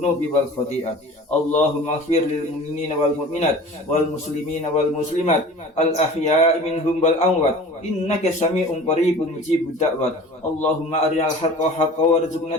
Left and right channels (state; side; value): normal; both; correlation 0.41